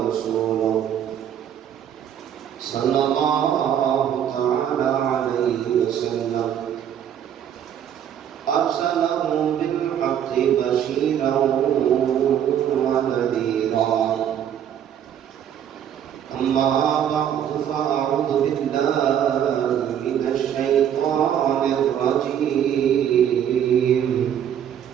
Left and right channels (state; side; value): quieter; left; 9.5 dB